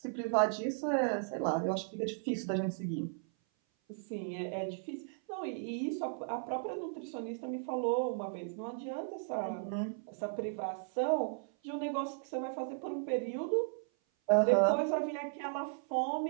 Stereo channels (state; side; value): silent; left; 54 dB below the other